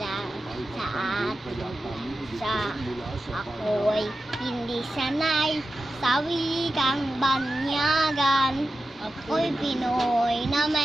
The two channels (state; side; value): normal; both; correlation 0.92